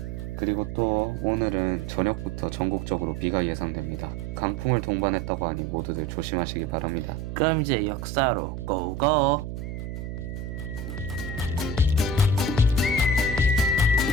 그리고 또 오늘은 저녁부터 전국적으로 비가 예상됩니다. 강풍을 동반했다고 하니 모두들 조심하시기 바랍니다. 그럼 이제 역사로 고고!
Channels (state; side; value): noise; right; hum, 7 dB below the sound